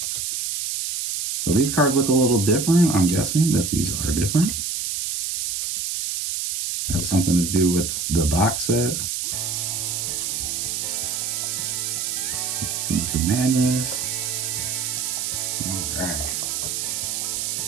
So these cards look a little different. I'm guessing that these are different. Have something to do with the box set. The Madness. All right.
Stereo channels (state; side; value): noise; right; hiss, 2 dB below the sound